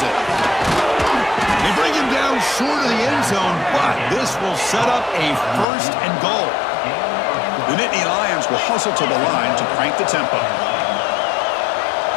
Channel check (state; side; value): drops out; right; at 5.7 s